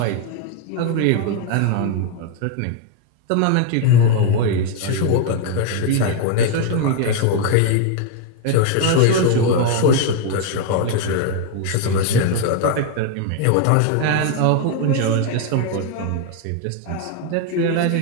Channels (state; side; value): different; both; correlation 0.01